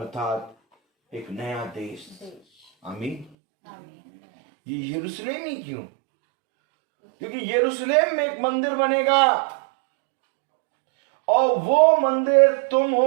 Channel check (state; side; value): drops out; left; at 3.3 s